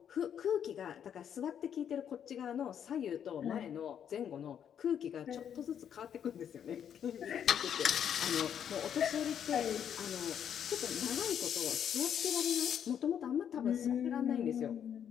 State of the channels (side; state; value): right; quieter; 8.8 dB